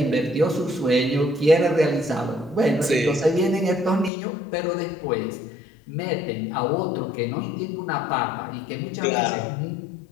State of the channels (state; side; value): drops out; right; at 4.1 s